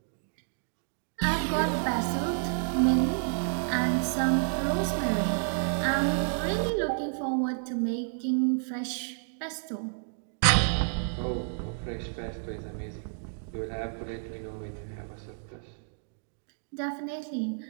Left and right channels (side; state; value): left; silent; digital silence